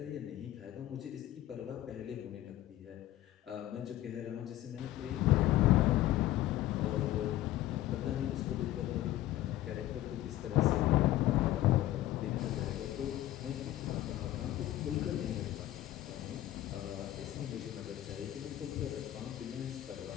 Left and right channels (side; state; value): right; quieter; 14.4 dB